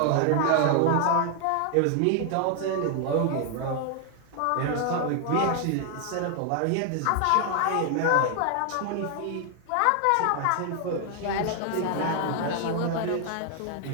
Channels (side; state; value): both; different; correlation 0.00